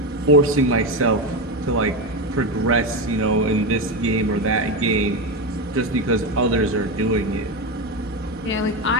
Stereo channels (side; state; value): both; normal; correlation 0.14